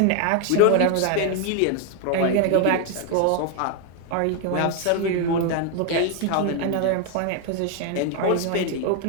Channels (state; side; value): different; both; correlation 0.01